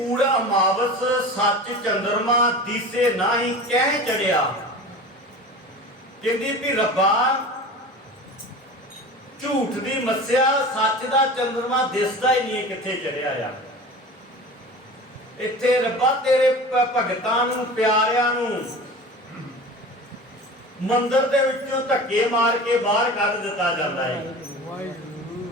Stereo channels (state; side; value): normal; both; correlation 0.35